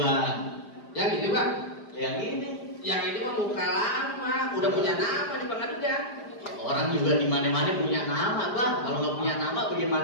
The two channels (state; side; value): late; right; 5.0 ms